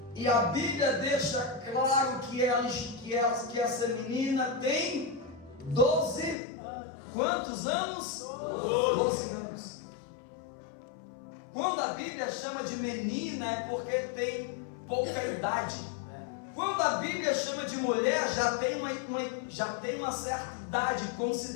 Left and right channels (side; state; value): right; drops out; at 6.4 s